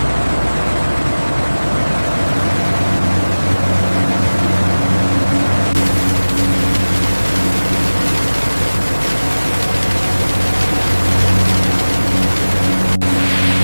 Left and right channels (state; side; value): inverted; both; correlation -1.00